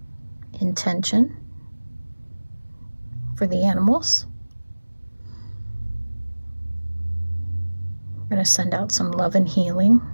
intention for the animals. We're going to send out some love and healing.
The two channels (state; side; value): inverted; both; correlation -1.00